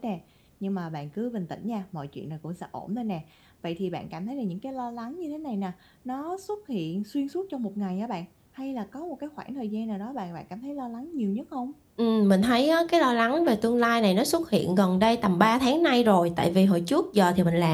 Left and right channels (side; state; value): both; identical; correlation 1.00